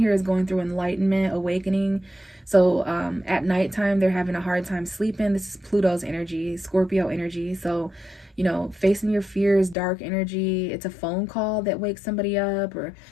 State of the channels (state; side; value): drops out; right; at 9.8 s